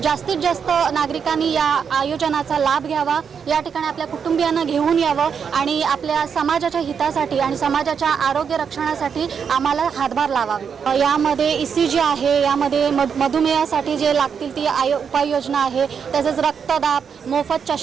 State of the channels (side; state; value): left; quieter; 6.8 dB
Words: जास्तीत जास्त नागरिकांनी या आयोजनाचा लाभ घ्यावा, या ठिकाणी आपल्या कुटुंबियांना घेऊन यावं आणि आपल्या समाजाच्या हितासाठी आणि समाजाच्या आरोग्य रक्षणासाठी आम्हाला हातभार लावावा। यामध्ये ECG आहे, यामध्ये मधुमेहासाठी जे लागतील ती उपाययोजना आहे, तसेच रक्तदाब, मोफत